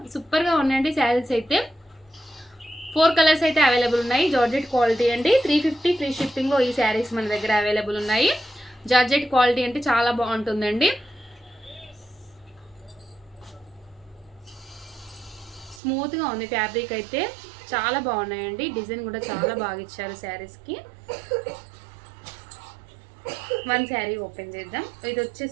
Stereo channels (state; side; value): drops out; left; at 15.8 s